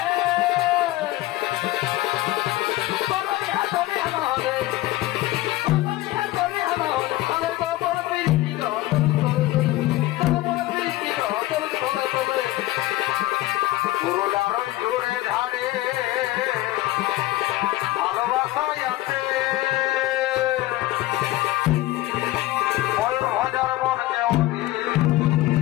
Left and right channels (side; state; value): right; quieter; 17.0 dB